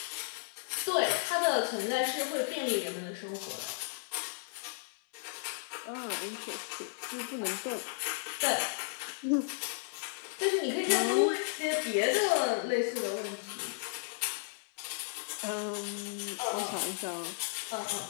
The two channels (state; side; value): silent; right; 55 dB below the other